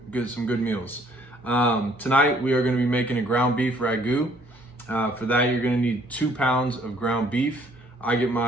meals. Tonight we are going to be making a ground beef ragu. For that, you're going to need 2 pounds of ground beef. I get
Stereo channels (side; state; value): both; normal; correlation 0.62